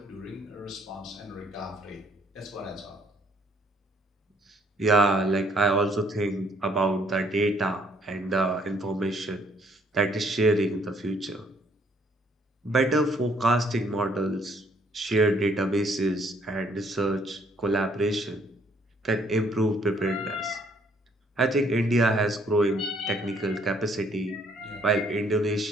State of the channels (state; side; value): normal; both; correlation 0.65